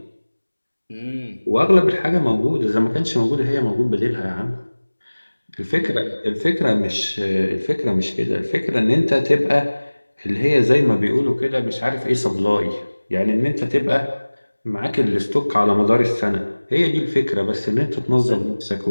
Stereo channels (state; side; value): inverted; both; correlation -1.00